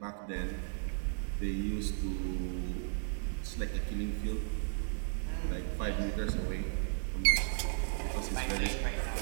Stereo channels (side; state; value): left; silent; digital silence